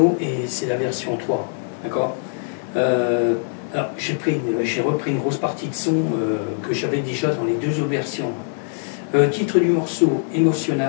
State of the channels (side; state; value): right; silent; digital silence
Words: et c'est la version 3, d'accord? Alors, j'ai repris une grosse partie de son que j'avais déjà dans les deux autres versions. Titre du morceau,